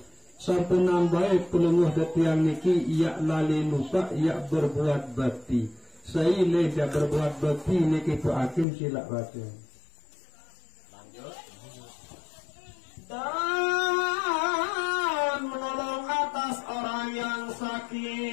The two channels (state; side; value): drops out; right; at 8.7 s